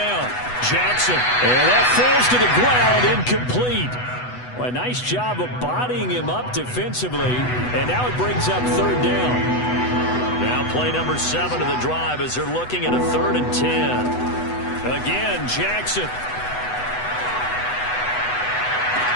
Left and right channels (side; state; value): right; late; 8.1 ms